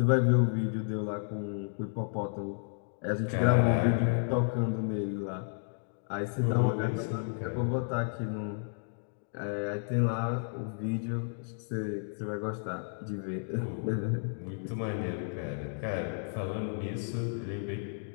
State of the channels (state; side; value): silent; right; digital silence